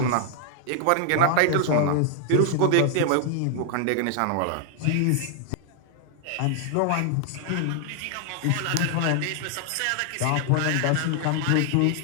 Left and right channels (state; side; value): different; both; correlation 0.00